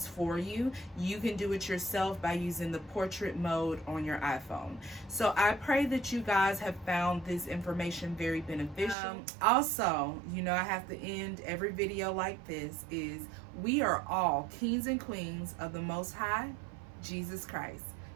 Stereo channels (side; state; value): left; drops out; at 9.0 s